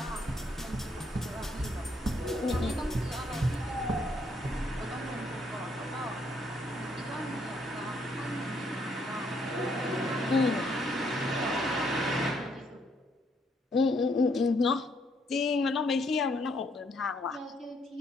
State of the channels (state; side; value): normal; both; correlation 0.70